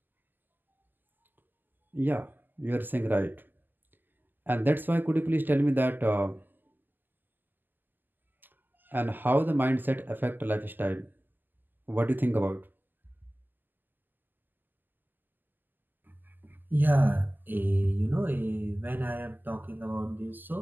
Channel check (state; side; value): late; left; 0.089 ms